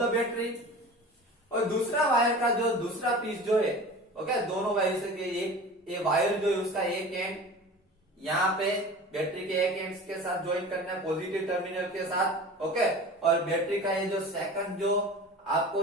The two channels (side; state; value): both; normal; correlation 0.37